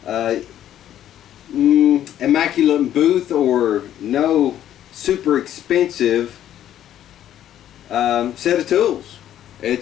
immaculate booth, or no super expensive set of tools.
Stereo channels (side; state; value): right; quieter; 11.4 dB